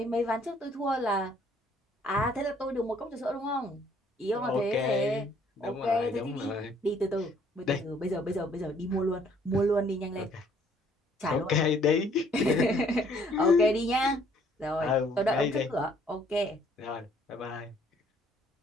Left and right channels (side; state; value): both; normal; correlation 0.62